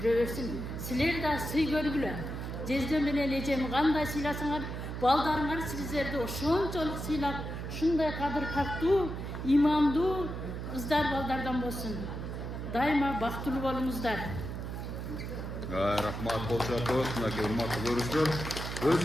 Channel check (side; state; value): right; noise; hum, 6 dB below the sound